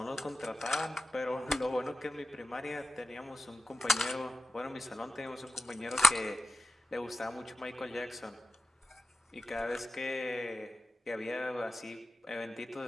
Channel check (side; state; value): both; normal; correlation 0.93